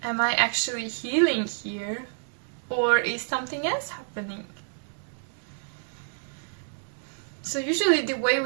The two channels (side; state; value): left; silent; 58 dB below the other